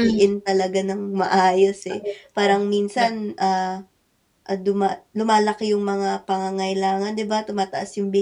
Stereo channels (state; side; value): identical; both; correlation 1.00